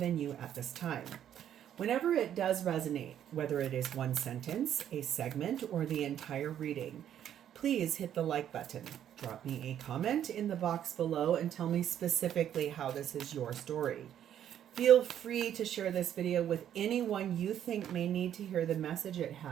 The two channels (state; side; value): quieter; left; 10.3 dB